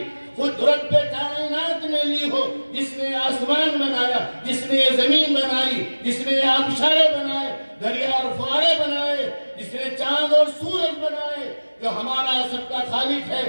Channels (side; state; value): both; inverted; correlation -1.00